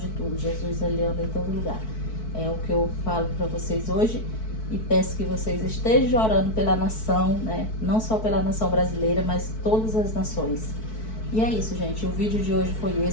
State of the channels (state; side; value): late; right; 4.6 ms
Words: de tudo. Jesus, ele anda em todo lugar. É o que eu falo para vocês hoje, e peço que vocês estejam orando pela nação, né? Não só pela nação brasileira, mas todas as nações. E é isso, gente. O vídeo de hoje foi